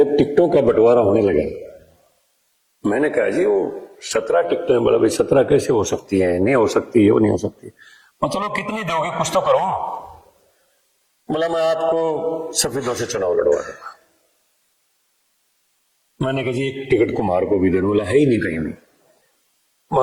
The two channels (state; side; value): identical; both; correlation 1.00